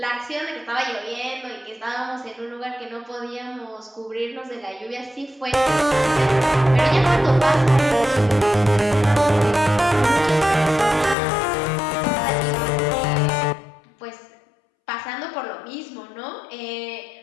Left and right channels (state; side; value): drops out; right; at 11.2 s